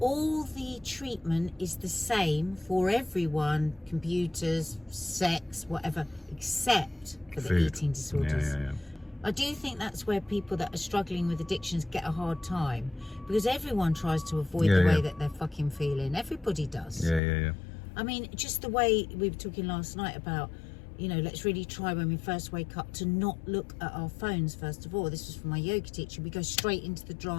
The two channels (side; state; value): right; drops out; at 17.2 s